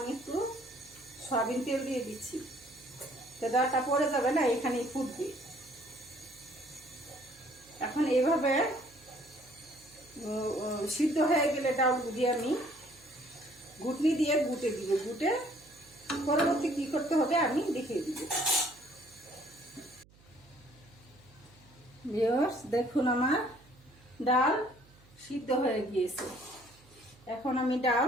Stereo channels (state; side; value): noise; right; hum, 27 dB below the sound